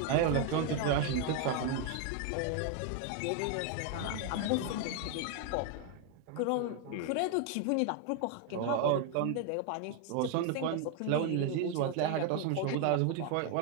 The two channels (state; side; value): different; both; correlation 0.01